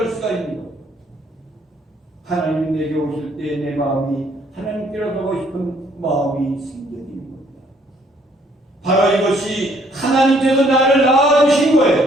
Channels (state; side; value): normal; both; correlation 0.64